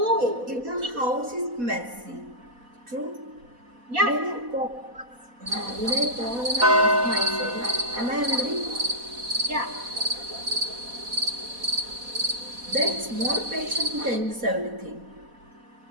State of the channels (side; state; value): left; late; 4.1 ms